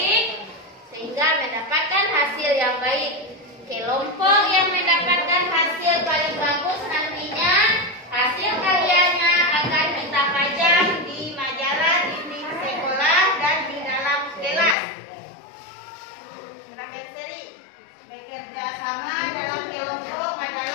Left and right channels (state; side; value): drops out; right; at 14.8 s